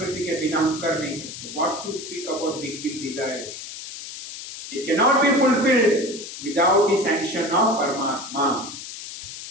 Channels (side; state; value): left; noise; hiss, 11 dB below the sound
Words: के बिना हम कर नहीं सकते. What to speak about big big desires. It cannot be fulfilled without the sanction of Paramatma.